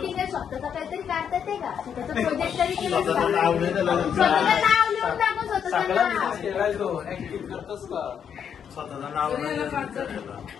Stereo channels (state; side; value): quieter; right; 8.0 dB